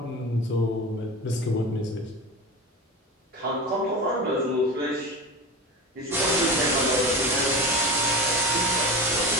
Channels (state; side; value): normal; both; correlation 0.28